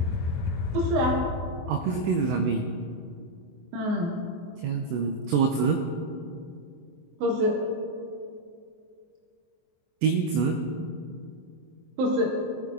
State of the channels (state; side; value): late; left; 24 ms